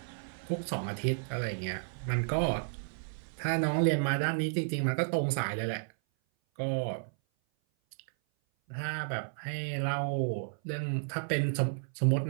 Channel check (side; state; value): left; silent; 56 dB below the other